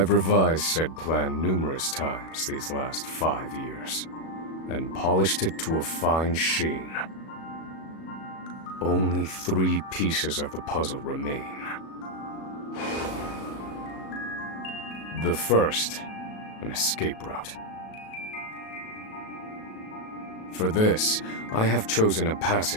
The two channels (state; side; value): late; right; 37 ms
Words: revised said plan numerous times these last 5 years, and polished it to a fine sheen. Only 3 pieces of the puzzle remain. The first, an escape route. For this, I have chosen a